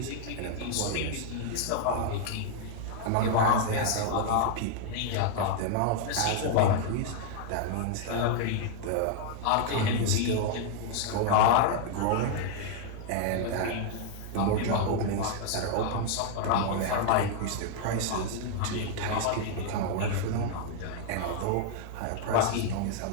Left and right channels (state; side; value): different; both; correlation 0.00